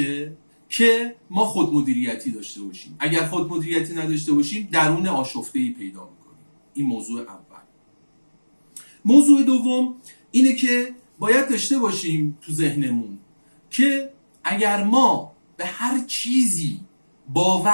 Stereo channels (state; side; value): inverted; both; correlation -1.00